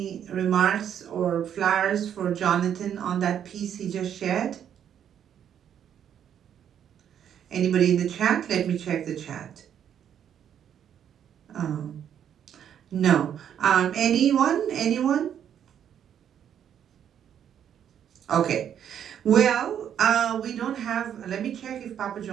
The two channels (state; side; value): quieter; left; 9.2 dB